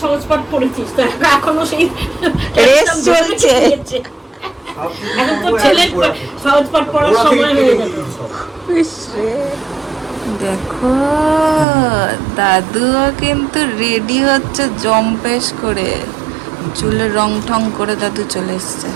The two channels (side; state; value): left; drops out; at 11.7 s